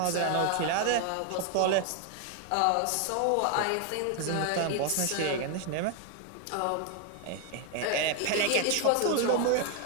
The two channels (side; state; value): both; different; correlation 0.00